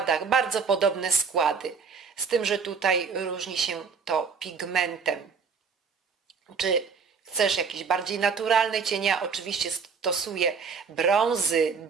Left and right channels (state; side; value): quieter; left; 5.7 dB